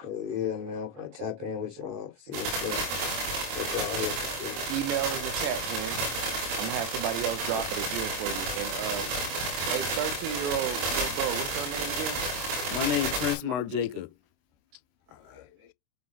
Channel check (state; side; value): late; left; 24 ms